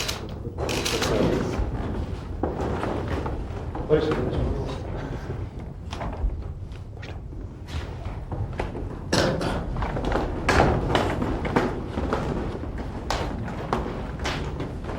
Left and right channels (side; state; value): both; identical; correlation 1.00